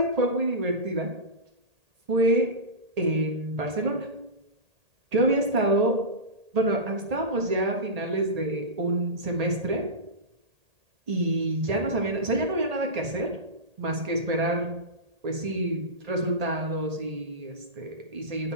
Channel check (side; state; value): left; late; 1.8 ms